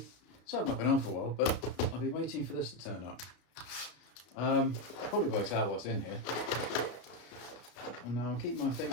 So I've not been on for a while, but I've been waiting for this to turn up. Probably works out what's in here. And now I'll keep my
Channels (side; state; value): right; late; 33 ms